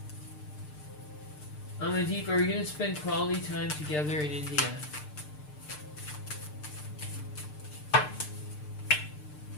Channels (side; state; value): right; late; 6.7 ms